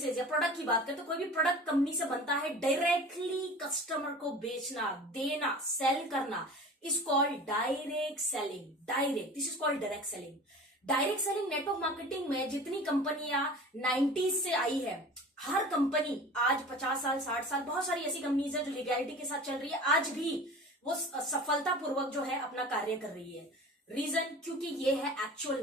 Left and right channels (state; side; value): normal; both; correlation 0.39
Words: या प्रोडक्ट की बात करें तो कोई भी प्रोडक्ट कंपनी से बनता है, डायरेक्टली कस्टमर को बेचना, देना, सेल करना is called direct selling. Direct, this is called direct selling. Direct selling network marketing में जितनी कंपनियां 90s से आई है, हर कंपनी आज 50 साल 60 साल, बहुत सारी ऐसी कंपनीज है जो लीगैलिटी के साथ चल रही है, आज भी वो सफलतापूर्वक जो है अपना कार्य कर रही है। रीजन, क्योंकि ये है एक्चुअल